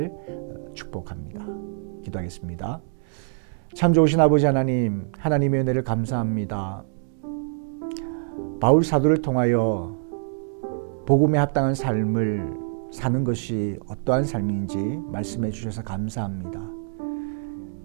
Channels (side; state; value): left; silent; digital silence